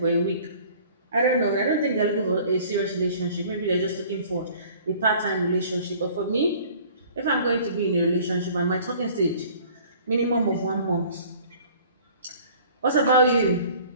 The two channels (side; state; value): both; inverted; correlation -0.50